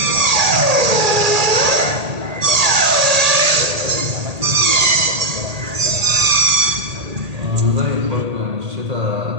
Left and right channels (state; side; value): late; left; 1.8 ms